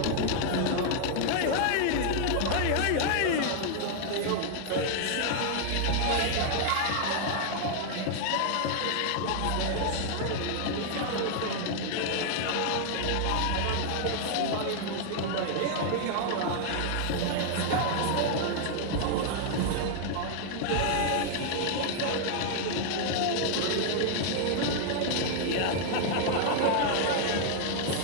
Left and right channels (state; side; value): different; both; correlation 0.00